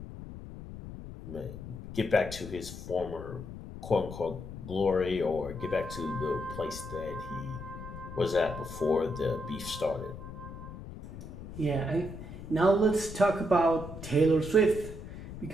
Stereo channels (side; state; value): left; noise; rumble, 11 dB below the sound